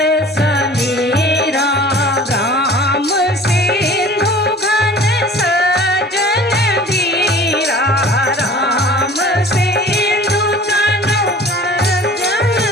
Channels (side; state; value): both; normal; correlation 0.45